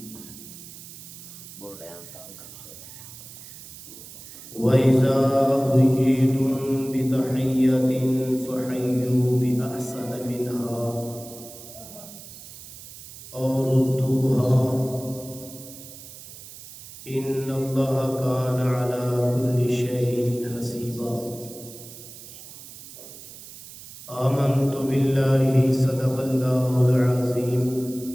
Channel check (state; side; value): noise; right; hiss, 16 dB below the sound